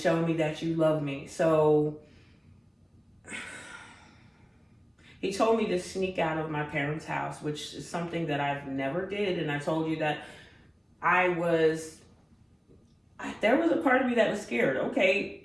me that you love me. So he told me to sneak out of my parents' house, which is something that I've never did. And I told you that there was a part of me that was scared.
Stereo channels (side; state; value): both; identical; correlation 1.00